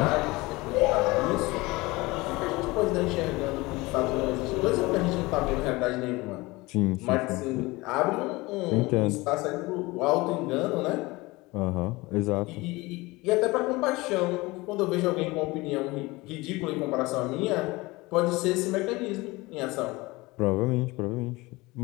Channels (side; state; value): right; quieter; 22.1 dB